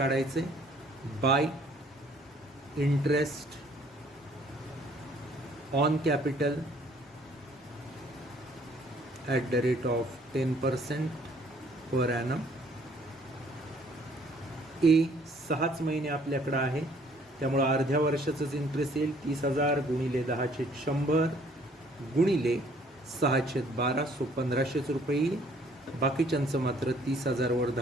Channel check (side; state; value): both; normal; correlation 0.60